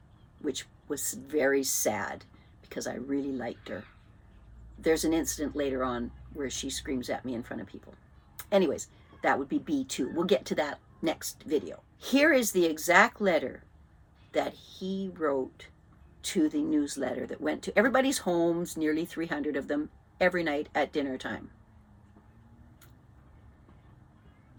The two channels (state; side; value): identical; both; correlation 1.00